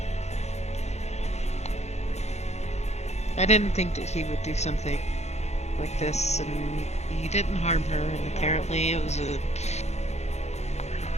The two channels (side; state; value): right; late; 0.32 ms